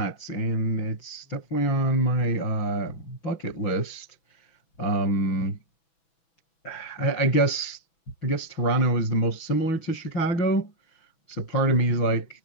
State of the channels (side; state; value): right; late; 6.1 ms